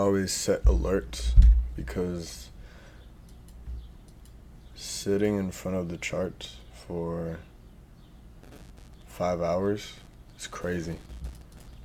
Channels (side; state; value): both; identical; correlation 1.00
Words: set alerts, because sitting in front of the chart for 5 hours is crazy.